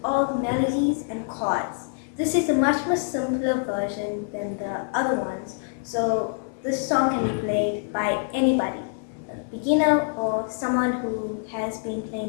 all the melodies and chords. This is a much more simpler version than the other ones, so this song can be played by anybody, a beginner or someone who has been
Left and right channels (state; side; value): silent; right; digital silence